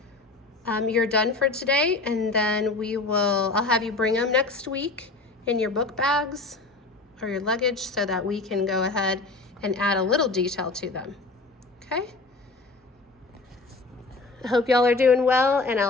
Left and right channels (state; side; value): quieter; right; 3.5 dB